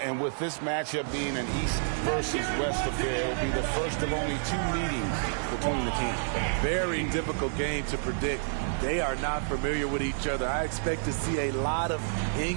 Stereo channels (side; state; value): left; silent; digital silence